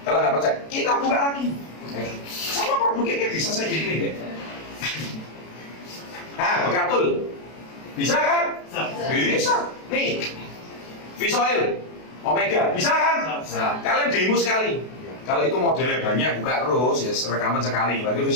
Kalau nggak percaya, kita buka lagi. Sama produknya bisa saya gini. Nah, bekatul. Bisa kan? Bisa. Nih, fish oil, omega, bisa kan? Nah, kalian demo sekali. Kalau itu modelnya banyak, buka terus, ya rekaman sekali. Berarti itu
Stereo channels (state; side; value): late; right; 32 ms